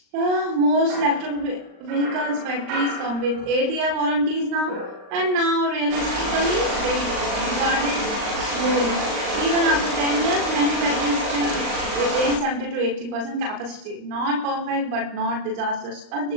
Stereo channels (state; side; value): late; left; 39 ms